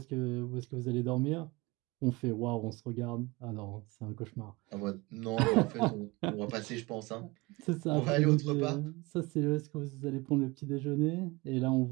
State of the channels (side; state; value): left; quieter; 23.7 dB